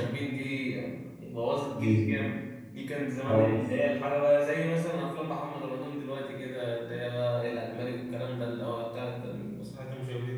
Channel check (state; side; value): identical; both; correlation 1.00